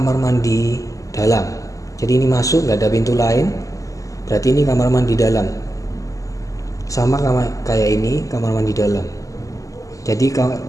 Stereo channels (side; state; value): right; late; 0.16 ms